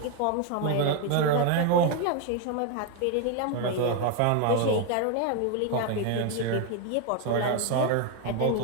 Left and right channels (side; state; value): both; different; correlation 0.01